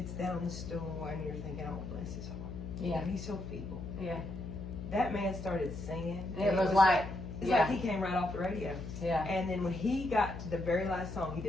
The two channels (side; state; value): left; noise; hum, 8 dB below the sound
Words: down on the stool, and you're thinking, oh, bless his heart. Yeah. And he's so feeble. Yeah. That man started singing. It was like, it's yeah. like he came right off the radio. Yeah. And then when he got to the very last song, he